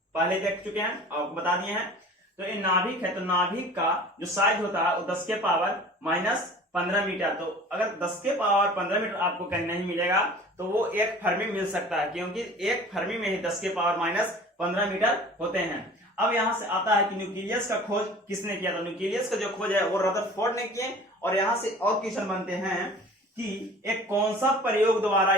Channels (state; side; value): normal; both; correlation 0.44